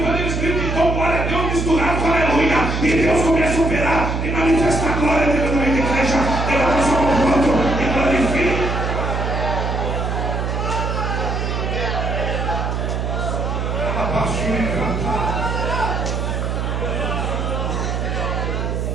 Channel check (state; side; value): noise; right; hum, 1 dB below the sound